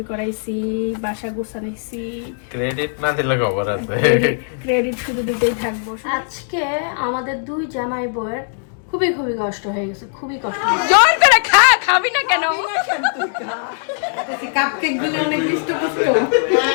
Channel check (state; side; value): silent; right; digital silence